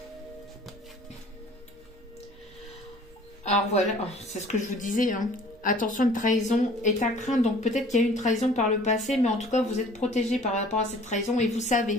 Alors voilà, c'est ce que je vous disais, hein. Attention, une trahison est à craindre. Donc peut-être qu'il y a eu une trahison par le passé, mais en tout cas, vous êtes protégé par rapport à cette trahison. Et vous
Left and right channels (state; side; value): normal; both; correlation 0.51